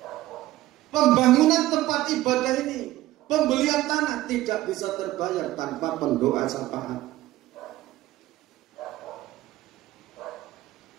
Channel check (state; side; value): quieter; left; 16.2 dB